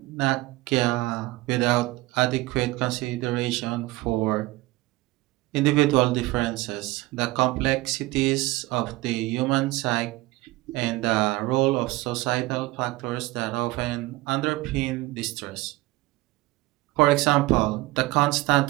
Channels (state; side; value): quieter; left; 20.0 dB